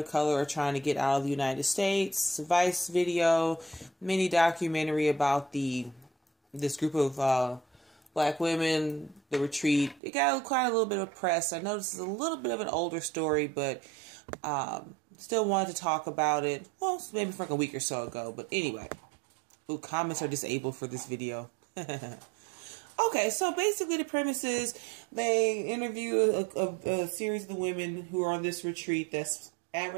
color are trying to get out of the United States. Vice video, mini documentary about this group of black women, the retreat. It got quite a little bit of press. I know this is a little bit of an older story, but still wanted to talk about it. Well, maybe from like a week or so ago, but anyway. Ooh, comments are disabled for this video. Okay, so basically the premise is they interview a series of the women who are on this retreat that's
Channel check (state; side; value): drops out; left; at 10.0 s